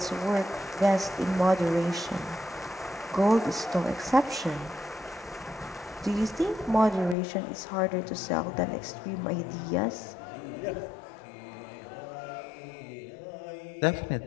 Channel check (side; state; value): right; drops out; at 7.2 s